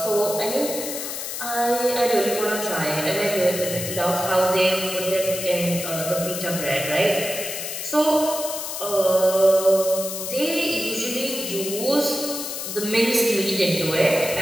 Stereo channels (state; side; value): noise; left; hiss, 6 dB below the sound